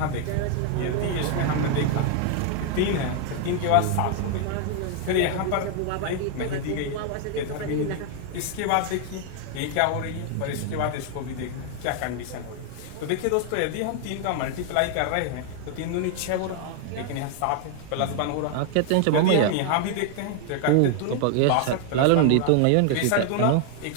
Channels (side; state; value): both; different; correlation 0.00